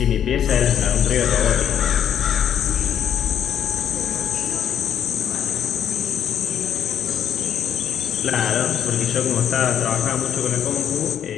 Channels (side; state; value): right; quieter; 9.3 dB